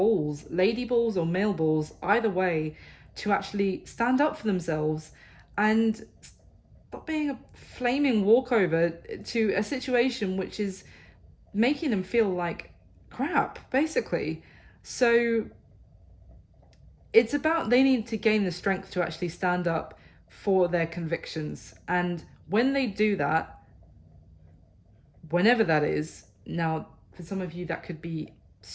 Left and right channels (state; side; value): identical; both; correlation 1.00